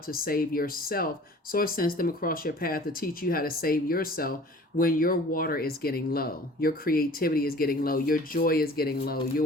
save yourself. Source sends them across your path to teach you how to save yourself when your water is getting low. Your creativity is getting low. Your joy is getting low.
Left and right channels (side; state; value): both; normal; correlation 0.47